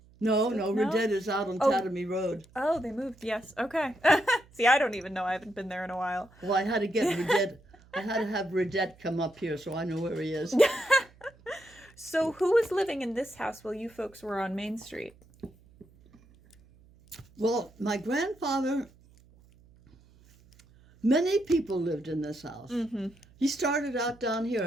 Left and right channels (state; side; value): noise; right; hum, 27 dB below the sound